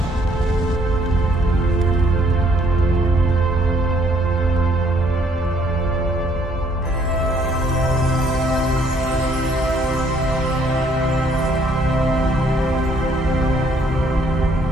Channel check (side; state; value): both; normal; correlation 0.66